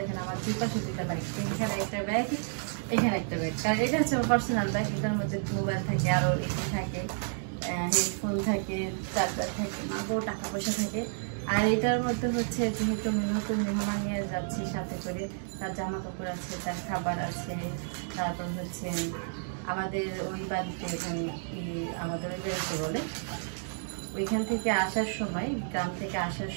আমার দুই পাশে দুইটা ব্যাগ, এখানে একটা ব্যাগ, এখানে একটা ব্যাগ। কারণ এটা হচ্ছে আমার পার্সোনাল ব্যাগ, এটার মধ্যে মোবাইল থাকে, আরও এখানে থাকে হেডফোন থাকে, চার্জার থাকে, মাগো টাকা পয়সা থাকে। আর এটার মধ্যে হচ্ছে যেহেতু নতুন মেহমান নিয়ে যাচ্ছি সাথে করে, তার জামা কাপড় আছে, তার খাবার আছে, তারপর হচ্ছে আমাদের ওই বাড়িতে এখানে আমাদের ওই বাড়িতে বলে ওইখান থেকে আসার সময়, গ্রাম থেকে আসার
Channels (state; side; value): silent; left; digital silence